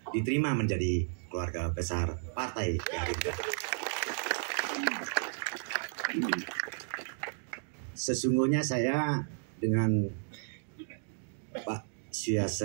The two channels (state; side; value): silent; left; digital silence